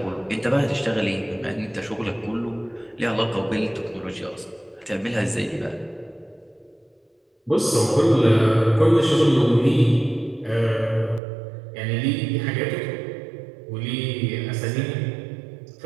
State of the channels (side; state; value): left; drops out; at 11.2 s